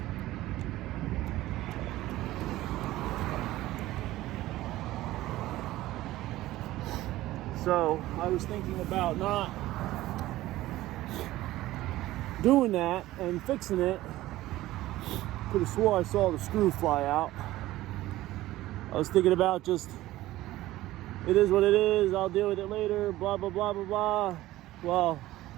So I was thinking about not doing that and fixing it. Could have swore I saw the screw fly out. I was thinking about just, it is what it is, I'll deal with it later, blah, blah, blah, blah, blah. Well,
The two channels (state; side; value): quieter; left; 16.2 dB